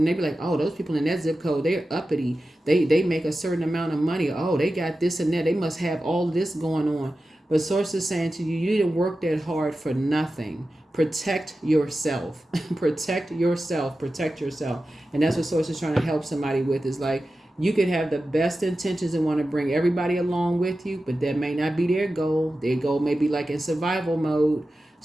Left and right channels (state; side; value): normal; both; correlation 0.93